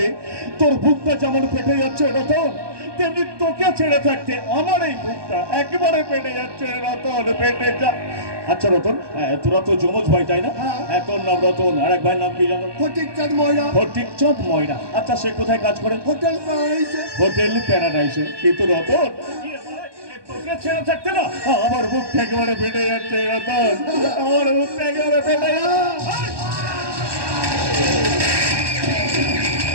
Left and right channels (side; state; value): left; late; 1.2 ms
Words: তোর বুকটা যেমন ফেটে যাচ্ছে রতন, তেমনি তোকে ছেড়ে থাকতে আমার এই বুকটা একেবারে ফেটে যাচ্ছে রতন, ফেটে যা। আচ্ছা রতন, তোরা তো যমজ ভাই তাই না? হ্যাঁ। তোর নাম রতন, আর এক ভাইয়ের নাম কি জানো? ফটিকচাঁদ ময়রা। ফটিকচাঁদ ময়রা। আচ্ছা, সে কোথায় কাজ করে? হোটেল প্যারাডাইসে। হোটেল প্যারাডাইসে। কিন্তু রতন, তোকে ছেড়ে থাকতে না আমার বুকটা একেবারে ফেটে যাচ্ছে রতন, আমার বুকটা একেবারে ফেটে যাচ্ছে।